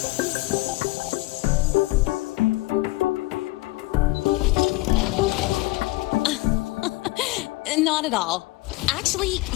Not at all. Actually,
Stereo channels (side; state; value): right; quieter; 21.1 dB